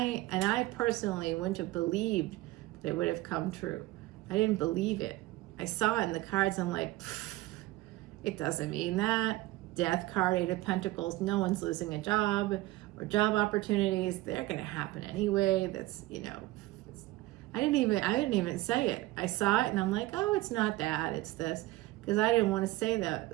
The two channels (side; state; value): left; quieter; 18.3 dB